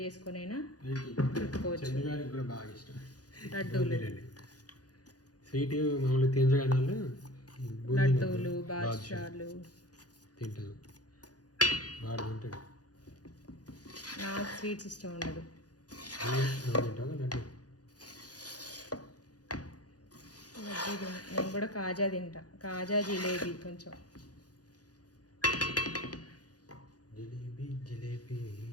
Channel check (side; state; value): right; late; 0.68 ms